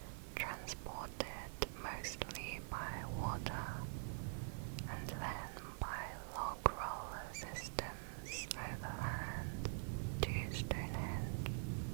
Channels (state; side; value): silent; left; digital silence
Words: transported mostly by water and then by log roller systems overland to Stonehenge.